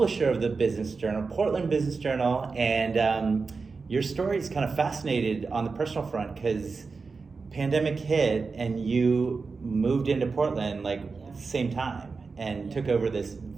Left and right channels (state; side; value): quieter; left; 4.5 dB